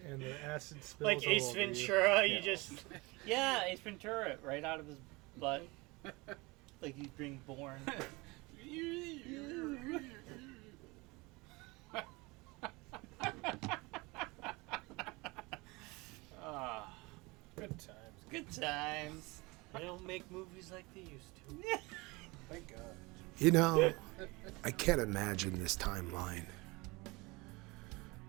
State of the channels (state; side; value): quieter; left; 24.4 dB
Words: And the acid spills Like all Ace over you. Ventura, you just Yeah, Ace Ventura, right out of his butt. Like he's being born. Good times. Good times. They don't make movies like they used to. Thank God. You know, I can't imagine this timeline.